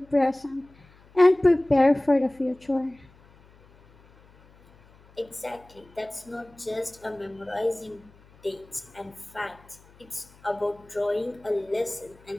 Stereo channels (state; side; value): noise; left; hum, 27 dB below the sound